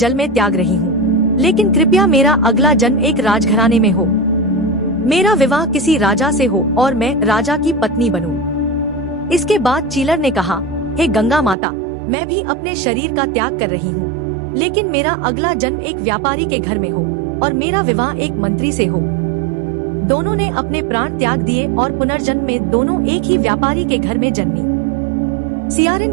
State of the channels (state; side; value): drops out; left; at 11.6 s